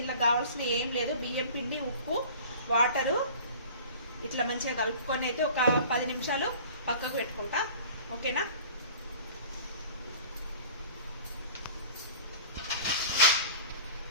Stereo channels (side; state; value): both; inverted; correlation -0.43